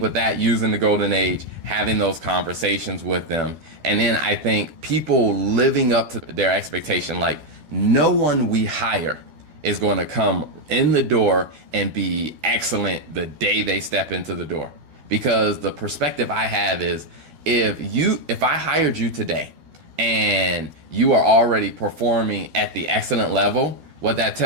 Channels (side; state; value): left; late; 12 ms